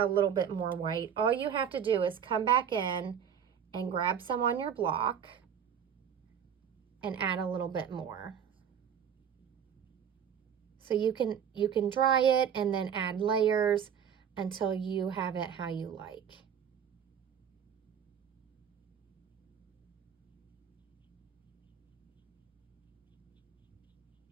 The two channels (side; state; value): left; quieter; 8.2 dB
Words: little bit more white, all you have to do is come back in and grab some on your block and add a little bit more. So you can dry it and then add layers until you have it how you like.